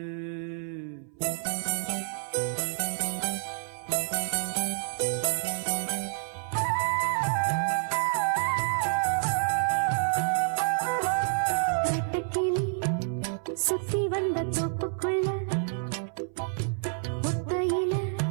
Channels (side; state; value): left; silent; 57 dB below the other